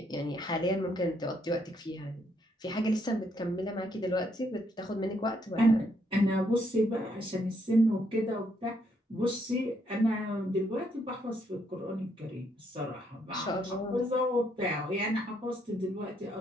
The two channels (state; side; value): normal; both; correlation 0.73